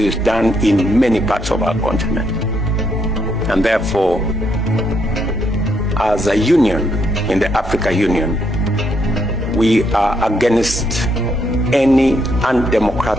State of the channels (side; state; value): both; normal; correlation 0.75